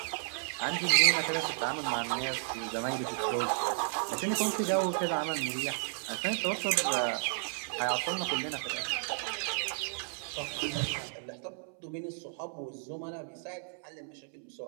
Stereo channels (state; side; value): silent; left; 56 dB below the other